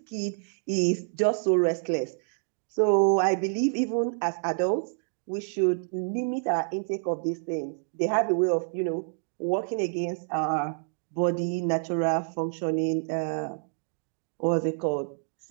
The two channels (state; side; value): silent; left; digital silence